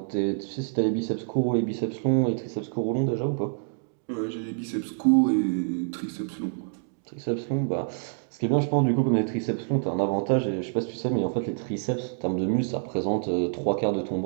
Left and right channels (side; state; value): left; silent; digital silence